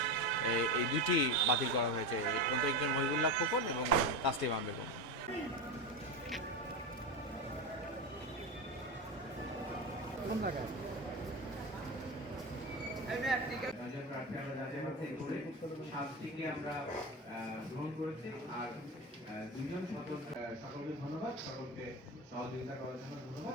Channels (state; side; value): normal; both; correlation 0.19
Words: এই দুইটি বাতিল করা হয়েছে। একজন মহিবুল্লাহ খোকন এবং তাসলিমা বেগম। আমরা গ্রহণ করেছি। আর 2জন সকলকে ধন্যবাদ, সকলকে সহযোগিতা করার জন্য